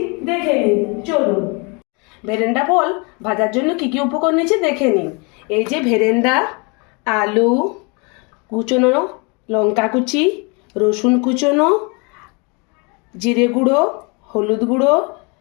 দেখে নিন, চলুন। ভেরেন্ডা ফল ভাজার জন্য কি কি উপকরণ নিয়েছি দেখে নিন। এই যে ভেরেন্ডা, আলু কুচনো, লঙ্কা কুচি, রসুন কুচনো, জিরে গুঁড়ো, হলুদ গুঁড়ো,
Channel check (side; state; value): right; quieter; 31.5 dB